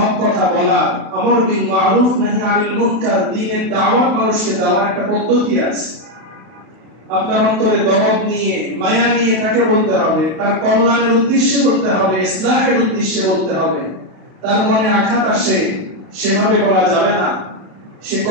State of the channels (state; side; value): late; left; 32 ms